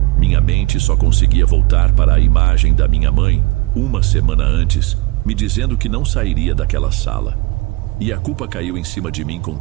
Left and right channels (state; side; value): quieter; left; 23.4 dB